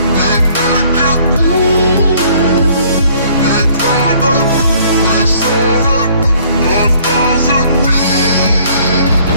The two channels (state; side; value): inverted; both; correlation -0.60